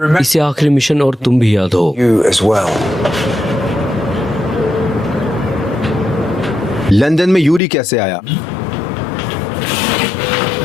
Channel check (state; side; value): drops out; right; at 7.6 s